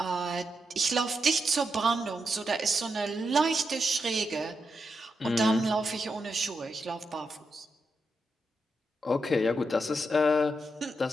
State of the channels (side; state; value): both; normal; correlation 0.84